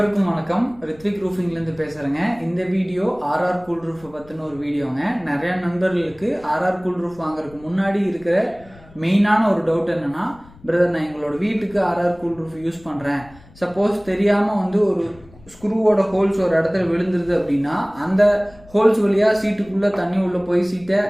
வணக்கம். ரித்விக் ரூஃபிங்லேருந்து பேசுகிறேங்க. இந்த வீடியோ ஆர்ஆர் கூல் ரூஃபை பற்றின ஒரு வீடியோங்க. நிறையா நண்பர்களுக்கு ஆர்ஆர் கூல் ரூஃப் வாங்குறதுக்கு முன்னாடி இருக்கிற மெயினான ஒரு டவுட் என்னென்னா, பிரதர் நான் எங்களோட வீட்டுக்கு ஆர்ஆர் கூல் ரூஃப் யூஸ் பண்ணுறேன், சப்போஸ் தெரியாமல் ஒரு ஸ்க்ரூவோட ஹோல்ஸ் ஒரு இடத்துல விழுந்துருது அப்படின்னா அந்த ஹோல்ஸ் வழியாக சீட்டுக்குள்ளே தண்ணி உள்ளே போய் சீட்டை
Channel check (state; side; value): noise; left; rumble, 24 dB below the sound